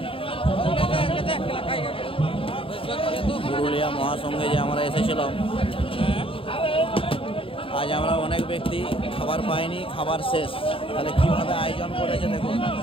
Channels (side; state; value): right; late; 0.26 ms